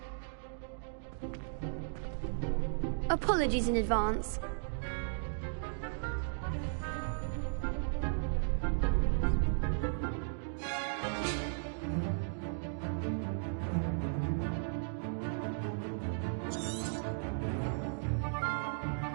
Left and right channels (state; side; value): silent; left; digital silence